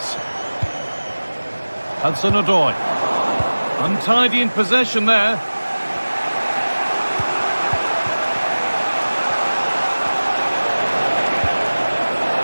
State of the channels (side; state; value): both; inverted; correlation -1.00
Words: Hudson-Odoi. Untidy in possession there.